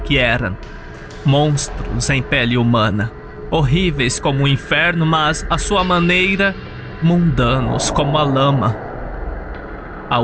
eram. Monstros em pele humana, horríveis como o inferno, mas à sua maneira, mundanos como a lama. A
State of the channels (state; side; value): identical; both; correlation 1.00